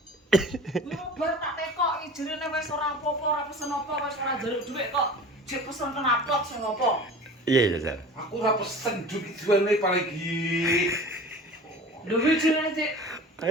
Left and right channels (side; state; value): both; normal; correlation 0.39